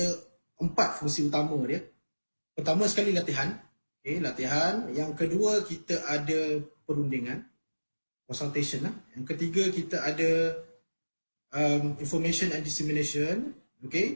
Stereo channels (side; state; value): both; inverted; correlation -1.00